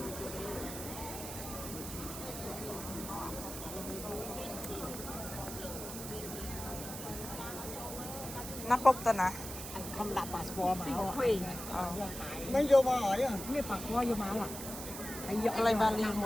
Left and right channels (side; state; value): right; noise; hiss, 8 dB below the sound